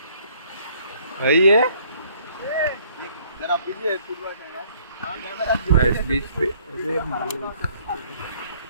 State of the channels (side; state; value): both; inverted; correlation -0.61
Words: भाई है जरा पीछे फुटबॉल खेलना गाइस।